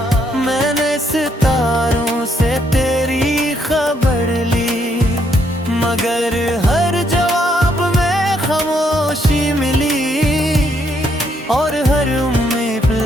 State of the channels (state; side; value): normal; both; correlation 0.73